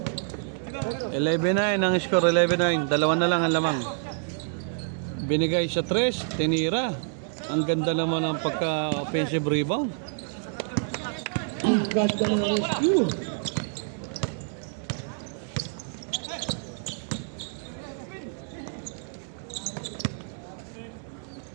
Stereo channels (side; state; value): left; silent; 60 dB below the other